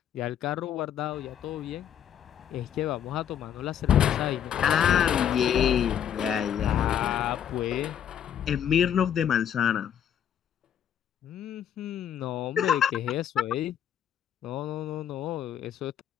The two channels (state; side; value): quieter; right; 9.4 dB